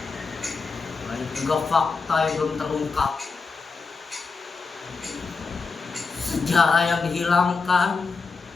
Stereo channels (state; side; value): quieter; right; 4.6 dB